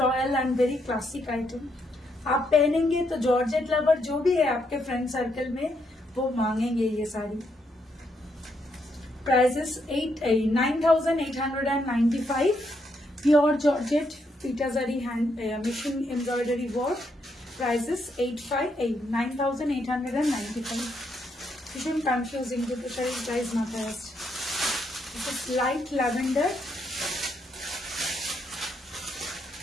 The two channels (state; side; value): normal; both; correlation 0.77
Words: and very classic item. आप पहनेंगे तो जॉर्जेट लवर जो भी है आपके फ्रेंड सर्कल में वो मांगेंगे ये साड़ी। प्राइसेस 9895, प्योर जॉर्जेट पिटाजारी hand machine embroidery work, prices 9895। भीषण कन्फ्यूजिंग দুটো শাড়ির প্রাইস মাথায় আসছে। দিস ইজ লাইট ল্যাভেন্ডার,